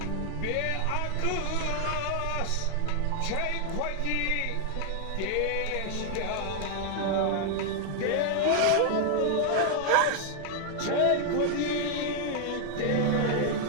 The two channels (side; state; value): both; different; correlation 0.00